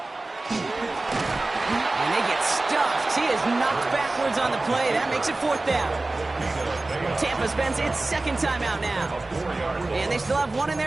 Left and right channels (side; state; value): left; quieter; 3.0 dB